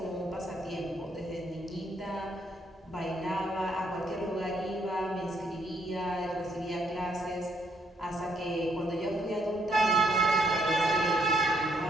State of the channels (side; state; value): both; normal; correlation 0.72